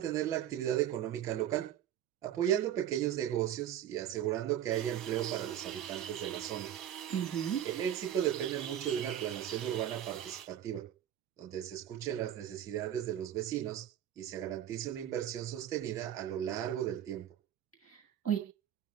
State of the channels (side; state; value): left; quieter; 10.8 dB